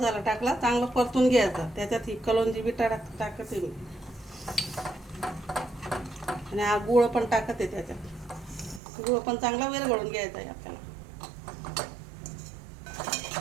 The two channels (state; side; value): drops out; left; at 8.8 s